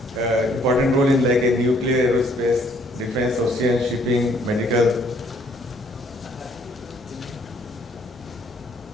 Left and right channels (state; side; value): normal; both; correlation 0.64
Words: important role in like a nuclear, aerospace, defense, ocean, shipping, medical.